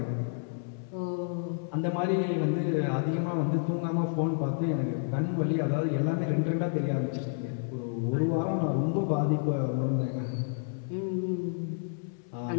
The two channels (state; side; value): silent; right; 58 dB below the other